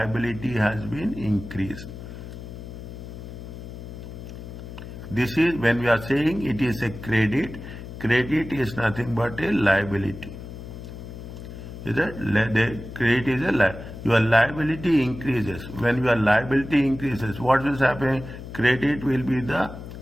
has been increased. This is when we are saying it is a credit. Credit is nothing but a liability. Is that the credit is a liability? Your liability increases. When your liability increases, what will happen? Credit will be the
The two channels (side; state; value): left; noise; hum, 11 dB below the sound